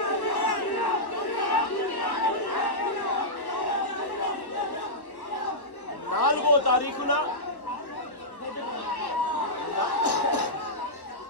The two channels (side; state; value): right; late; 1.1 ms